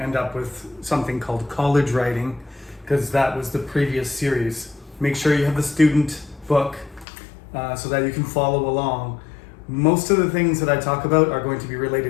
up with something called college writing, because that was the previous series. Make sure you have the student book so that you can follow along. Most of the things that I talk about are going to be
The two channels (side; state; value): right; drops out; at 7.1 s